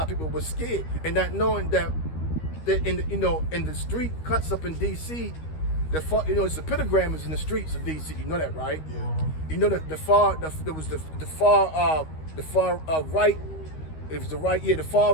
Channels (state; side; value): late; right; 13 ms